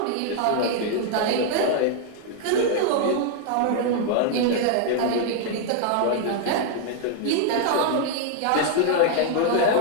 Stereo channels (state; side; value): different; both; correlation -0.01